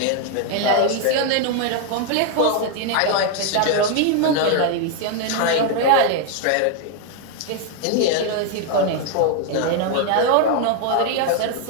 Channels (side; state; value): both; different; correlation 0.00